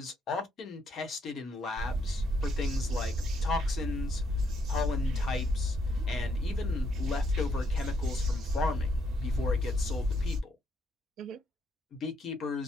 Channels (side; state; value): both; normal; correlation 0.74